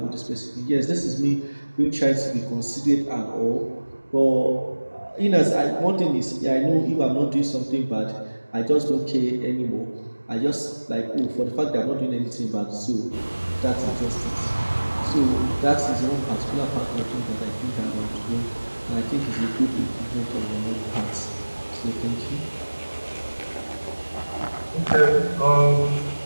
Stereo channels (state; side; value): inverted; both; correlation -1.00